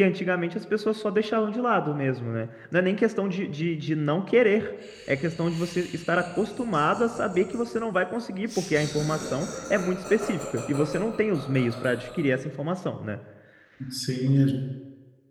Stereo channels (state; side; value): identical; both; correlation 1.00